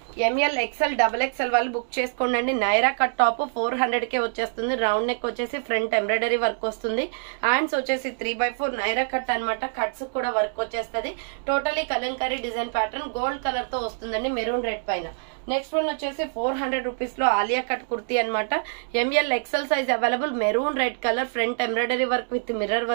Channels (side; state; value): left; silent; digital silence